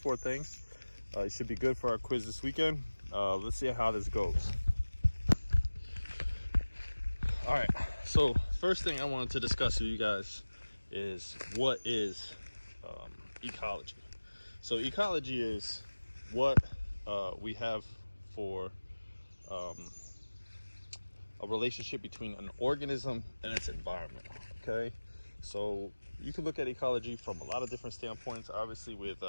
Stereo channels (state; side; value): inverted; both; correlation -1.00